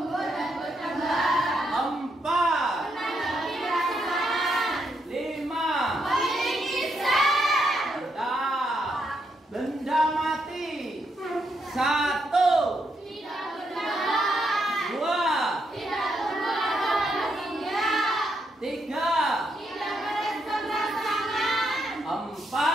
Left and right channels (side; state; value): both; normal; correlation 0.79